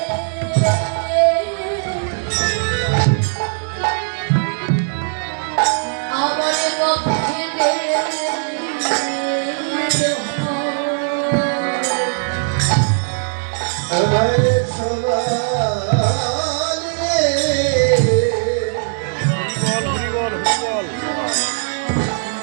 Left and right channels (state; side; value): silent; left; digital silence